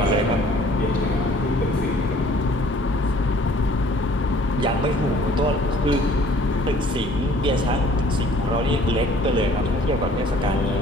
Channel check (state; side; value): normal; both; correlation 0.55